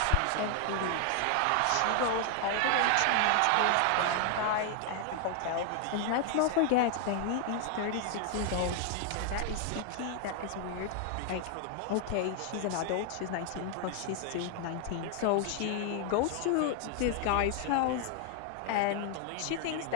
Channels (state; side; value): different; both; correlation 0.00